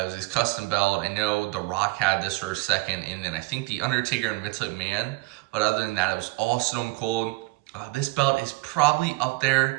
was his custom belt. I know The Rock had this for a second, and then I think The Undertaker and Vince McMahon. But other than that, it was all Stone Cold. This belt is probably up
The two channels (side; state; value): left; quieter; 23.3 dB